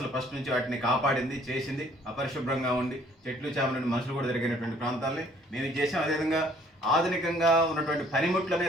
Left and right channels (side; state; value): both; normal; correlation 0.59